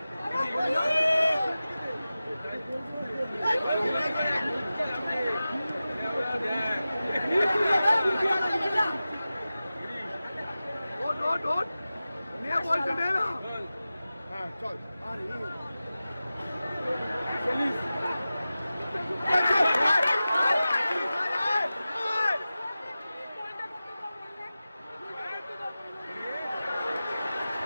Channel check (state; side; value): inverted; both; correlation -0.95